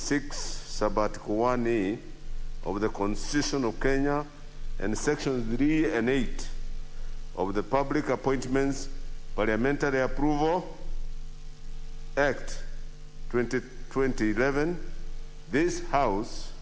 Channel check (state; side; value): identical; both; correlation 1.00